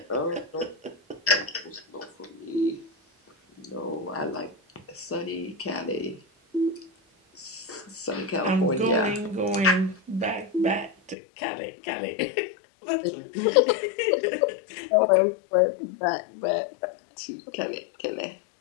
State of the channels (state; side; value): drops out; right; at 11.2 s